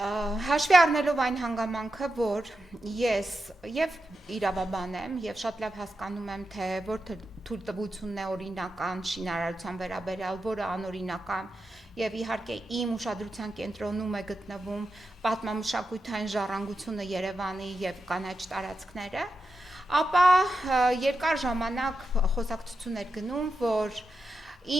Հաշվի առնելով այն հանգամանքը, որ ես եւ իրավաբան եմ եւ շատ լավ հասկանում եմ, թե որ թույլտվությունն է օրինական շինարարության վերաբերյալ, որը անօրինական եւ իհարկե իմ ուշադրության կենտրոնում է գտնվում պատմամշակութային ժառանգությունը Երևանի եւ կանաչ տարածքները, ապա երկար ժամանակ խոսակցություն էր գնում, որ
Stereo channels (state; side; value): normal; both; correlation 0.88